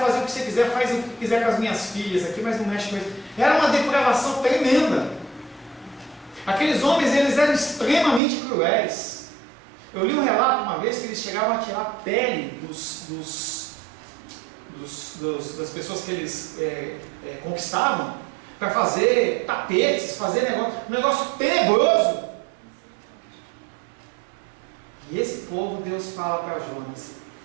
o que você quiser, faz o que quiser com as minhas filhas aqui, mas não mexe com isso. Era uma depravação tremenda. Aqueles homens, eles eram extremamente cruéis. Eu li um relato uma vez que eles chegavam a tirar a pele das pessoas que eles conquistavam para fazer tapetes, fazer um negócio tenebroso. E esse povo, Deus fala para Jonas,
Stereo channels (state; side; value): drops out; left; at 8.2 s